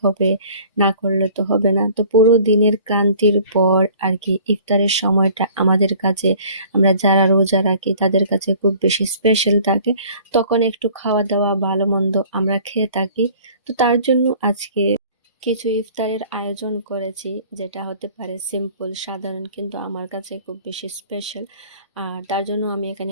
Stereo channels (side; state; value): both; inverted; correlation -0.51